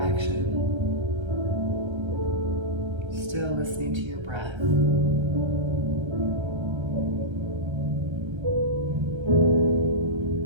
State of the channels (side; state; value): left; late; 1.3 ms